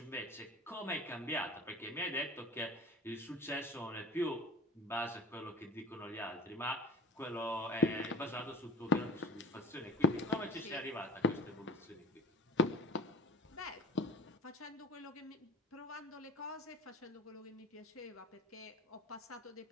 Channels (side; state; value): both; normal; correlation 0.39